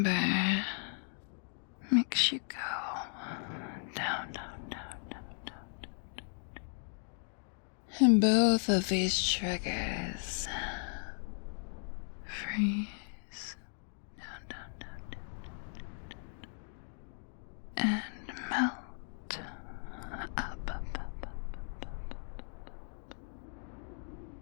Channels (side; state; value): right; silent; 53 dB below the other